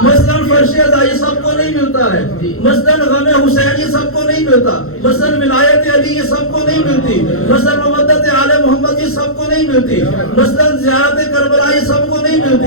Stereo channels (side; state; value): right; late; 0.62 ms